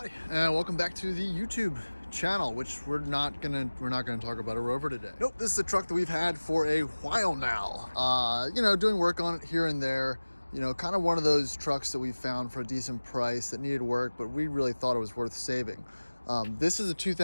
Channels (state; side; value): inverted; both; correlation -1.00